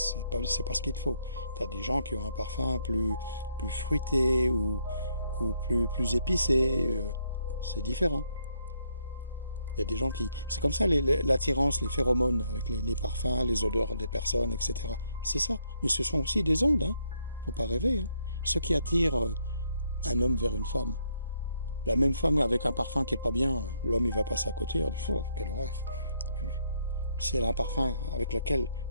pas ce qu'il te faut. Tu as des gens qui ont un parfum plus fruité ou plus épicé. C'est différent. Il y a des gens qui... C'est comme ça, l'attirance, les phéromones, avec les parfums, les odeurs des personnes, etc. C'est ça. Mais ce sont aussi des ondes, hein. Faut pas rêver. Hein. Ce qui attire un homme vers une femme. La même femme avec un parfum qui est pas bien, l'homme il va passer à côté, il dit, oh, quelle horreur. Si elle a un parfum avec lequel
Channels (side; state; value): both; inverted; correlation -0.72